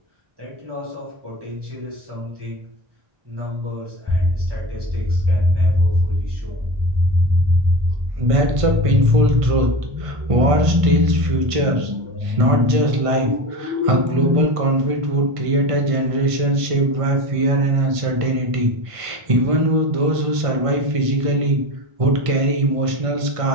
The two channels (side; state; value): left; late; 1.5 ms